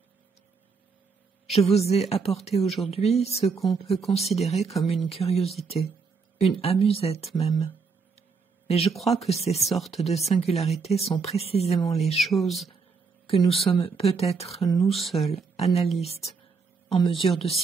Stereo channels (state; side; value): quieter; left; 5.0 dB